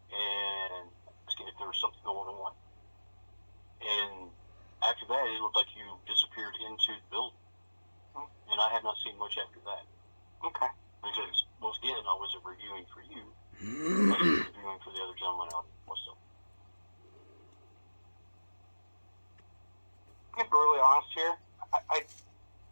and asking if there was something going on. And after that, it looked like you disappeared into the building. And and I have not seen much after that. Okay. Because, once again, I wasn't reviewing for you. I was reviewing for the other gentleman out in Westfield. To be really honest here, I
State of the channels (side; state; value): both; inverted; correlation -1.00